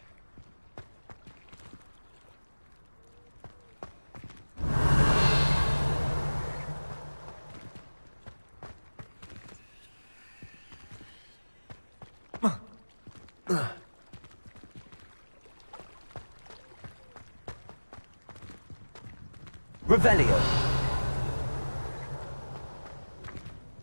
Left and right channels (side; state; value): both; inverted; correlation -1.00